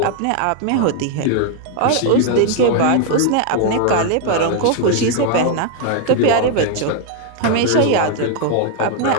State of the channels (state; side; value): different; both; correlation 0.00